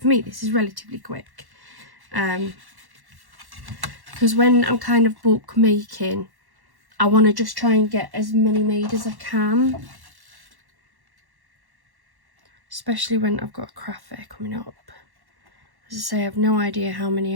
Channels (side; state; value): left; late; 1.1 ms